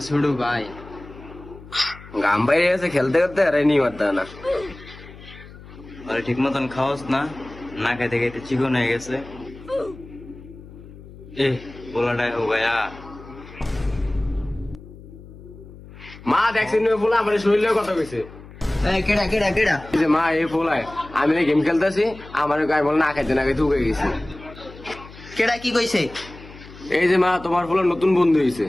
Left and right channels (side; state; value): left; noise; hum, 18 dB below the sound